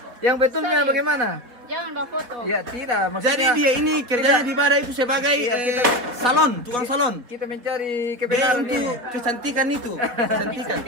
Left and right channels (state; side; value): late; left; 4.2 ms